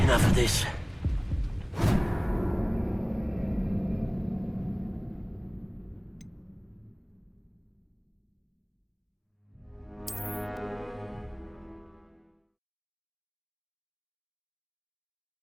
Enough of this.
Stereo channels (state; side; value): identical; both; correlation 1.00